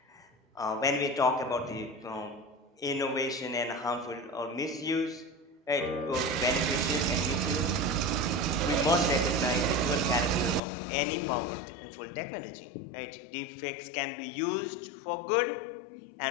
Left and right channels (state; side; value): drops out; right; at 10.6 s